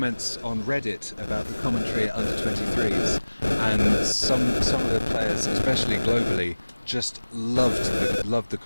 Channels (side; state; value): both; inverted; correlation -1.00